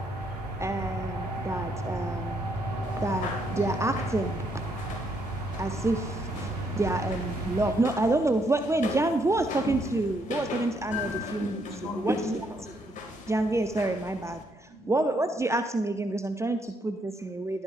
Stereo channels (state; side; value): normal; both; correlation 0.73